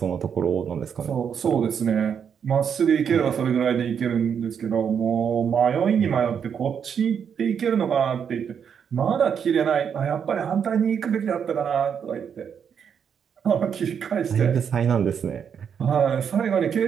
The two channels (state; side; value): quieter; left; 7.5 dB